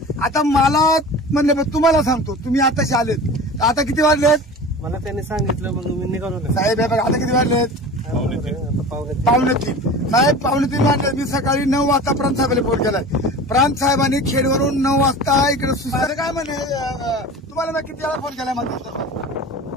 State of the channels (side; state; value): both; normal; correlation 0.36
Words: आता मला म्हणले तुम्हाला सांगतो, तुम्ही आताशी आलेत. आता किती वाजलेत? मला त्यांनी सांगितलं मग मी निघालो. साहेब बघा आता किती वाजलेत? 2:45. साहेब 2:45 वाजले. मी सकाळी 9 वाजता प्रांत साहेबांना फोन केलाय. प्रांत साहेबांनी खेडवरून 9 वाजता इकडे सुद्धा काय म्हणे तुम्हाला मी किती वेळा फोन केलाय माझा?